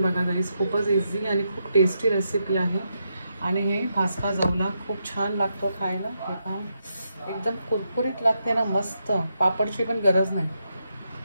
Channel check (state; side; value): inverted; both; correlation -0.82